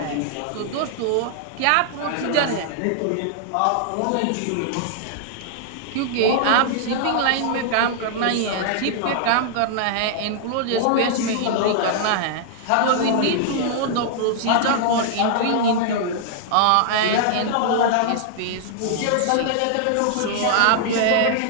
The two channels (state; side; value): different; both; correlation -0.01